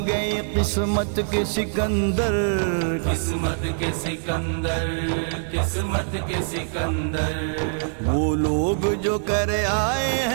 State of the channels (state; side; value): silent; left; digital silence